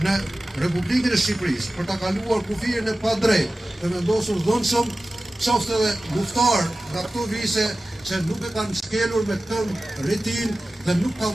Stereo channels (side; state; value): both; normal; correlation 0.96